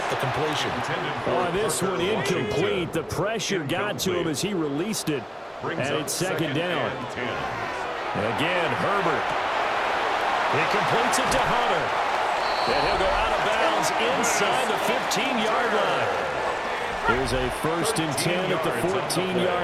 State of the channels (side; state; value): both; identical; correlation 1.00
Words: the completion. Oh, this one incomplete. The pressure got to him as he released it. And it's 2nd down. Again, Herbert. He completes it to Hunter. And he'll go out of bounds inside the 15-yard line. There's a 1st and 10 at the